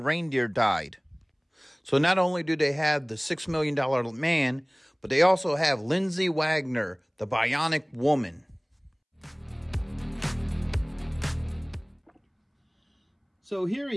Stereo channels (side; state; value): both; identical; correlation 1.00